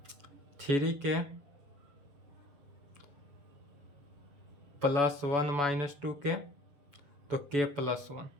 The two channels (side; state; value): left; late; 7.0 ms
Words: थ्री के प्लस 1 माइनस 2k, तो k प्लस 1,